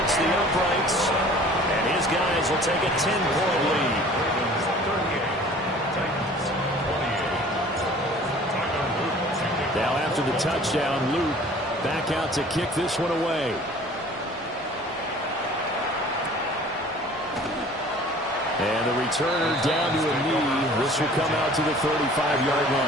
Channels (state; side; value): normal; both; correlation 0.48